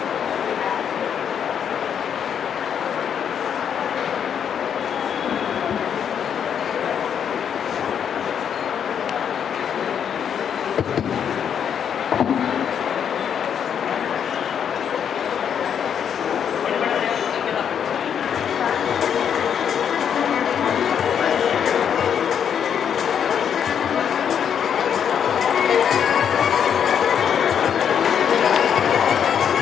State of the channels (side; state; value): right; quieter; 8.2 dB